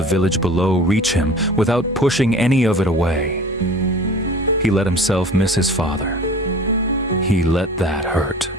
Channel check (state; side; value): normal; both; correlation 0.42